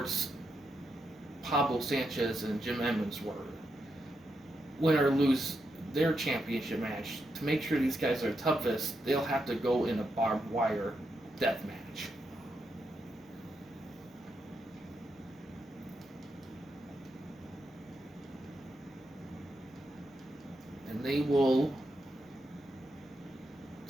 Pablo Sanchez and Jim Edmonds were, win or lose their championship match, to make sure these guys are toughest, they'll have to go in a barbed wire death match. And they will,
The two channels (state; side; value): normal; both; correlation 0.83